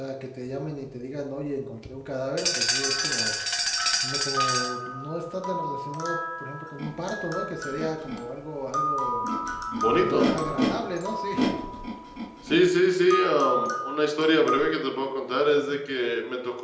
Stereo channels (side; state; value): both; identical; correlation 1.00